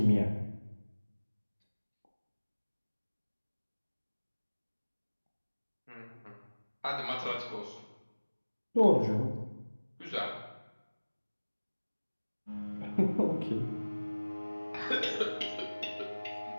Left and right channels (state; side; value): inverted; both; correlation -1.00